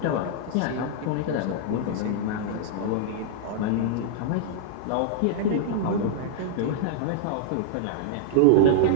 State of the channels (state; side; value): different; both; correlation -0.01